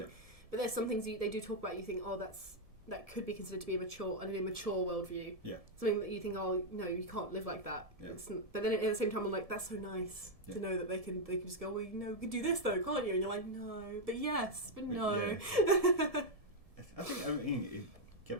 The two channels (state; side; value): late; left; 1.7 ms